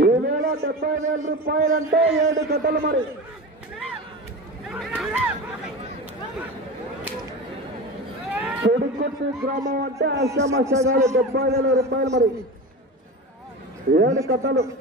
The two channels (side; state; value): both; normal; correlation 0.28